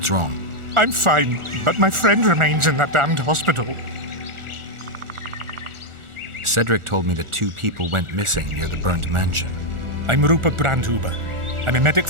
wrong? I'm fine, but my friend remains in that damned hospital. Cedric told me that 2 people went missing near the burnt mansion. I'm Rupert Brandhuber. I'm a medic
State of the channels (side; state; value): left; late; 1.4 ms